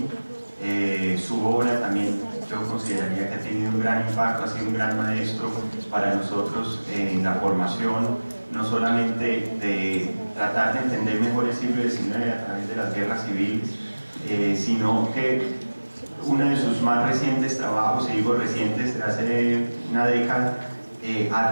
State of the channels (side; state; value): both; inverted; correlation -1.00